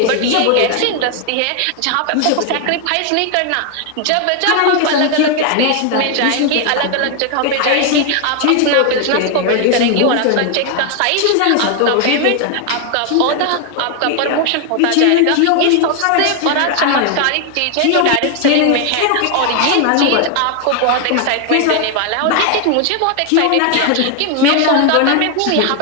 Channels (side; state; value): both; different; correlation 0.00